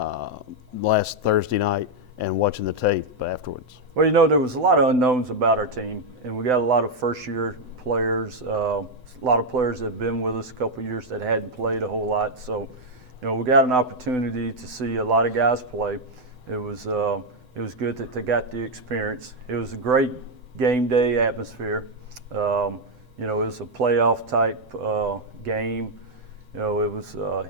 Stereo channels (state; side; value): late; left; 7.9 ms